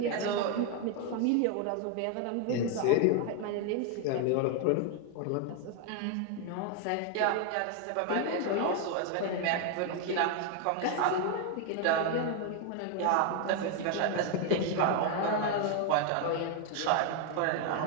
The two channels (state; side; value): different; both; correlation 0.01